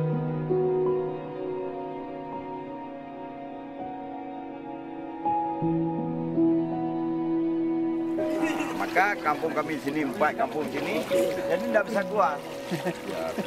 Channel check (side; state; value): right; noise; rumble, 29 dB below the sound